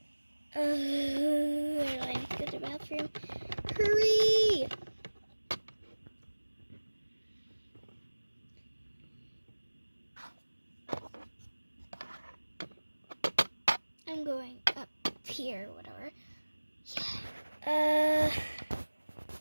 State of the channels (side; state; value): both; inverted; correlation -1.00